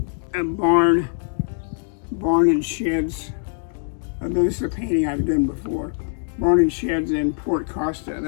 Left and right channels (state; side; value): silent; right; 64 dB below the other